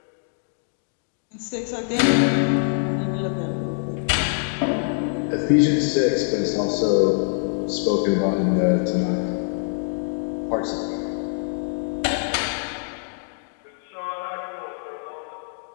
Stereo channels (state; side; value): silent; right; 62 dB below the other